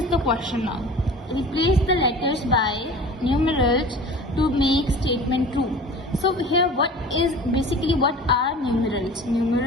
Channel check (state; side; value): normal; both; correlation 0.41